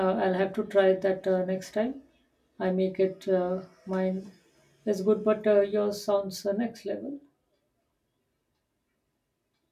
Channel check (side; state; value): both; identical; correlation 1.00